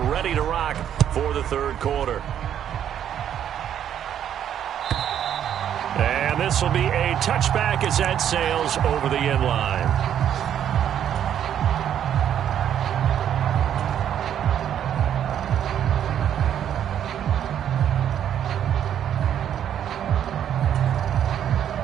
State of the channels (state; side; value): quieter; left; 9.8 dB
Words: ready to rock for the 3rd quarter. And this will be a touchback as that sails over the end line.